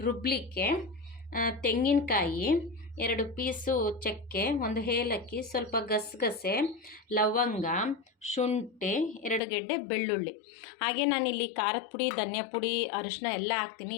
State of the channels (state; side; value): drops out; right; at 9.4 s